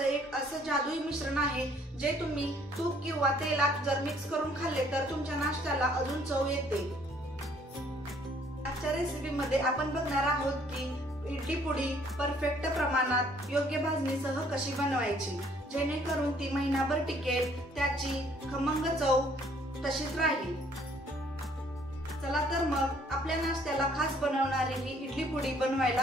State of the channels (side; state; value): both; normal; correlation 0.62